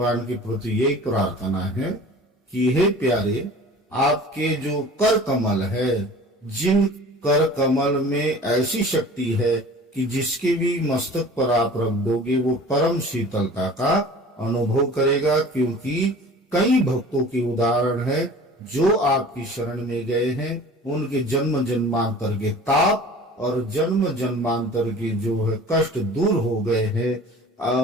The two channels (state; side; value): normal; both; correlation 0.43